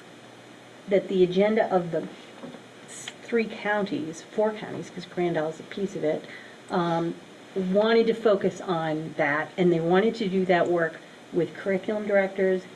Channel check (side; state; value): both; identical; correlation 1.00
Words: the agenda of the 4 counties, because Grand Isle is a piece of it, wanted to focus on that, and they wanted to do that work with curriculum directors